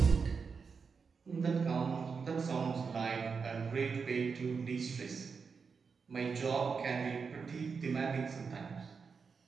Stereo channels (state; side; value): quieter; left; 5.4 dB